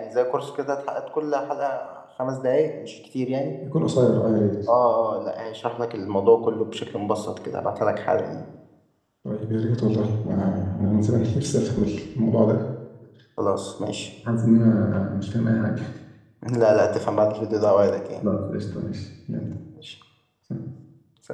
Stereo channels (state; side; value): identical; both; correlation 1.00